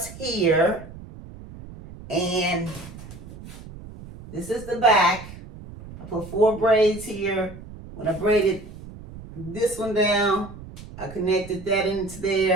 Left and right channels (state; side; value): noise; right; rumble, 15 dB below the sound